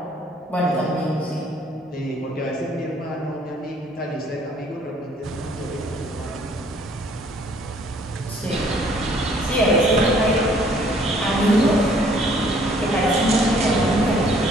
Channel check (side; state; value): both; normal; correlation 0.60